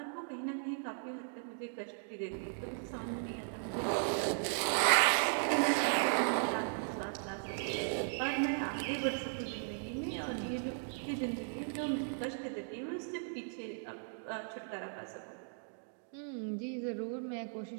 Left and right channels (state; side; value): silent; left; digital silence